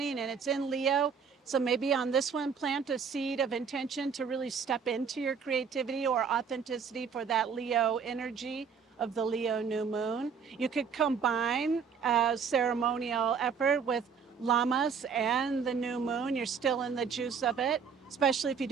and it's in Leo. So maybe on this one, plant a seed of intention to really step into your creativity or authenticity for that Leo energy of the Leo new moon. You could combine a ceremonial effort with Lamas and the new moon. You're still in the juice of it, especially if you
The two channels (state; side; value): quieter; left; 6.3 dB